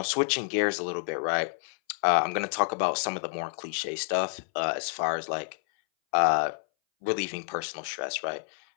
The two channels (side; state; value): right; silent; 59 dB below the other